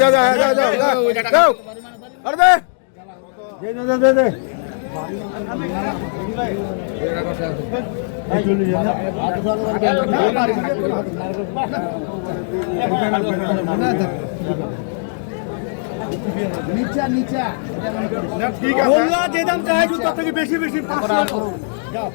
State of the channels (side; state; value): right; silent; digital silence